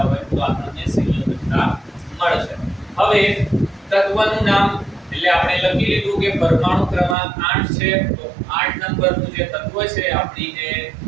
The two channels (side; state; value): left; drops out; at 7.2 s